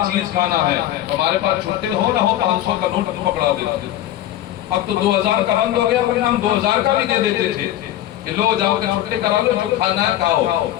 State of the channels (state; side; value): quieter; right; 13.0 dB